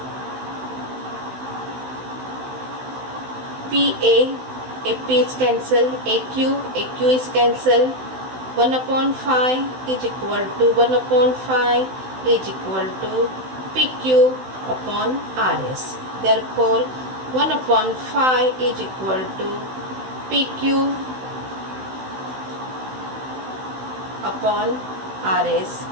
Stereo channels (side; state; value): left; late; 16 ms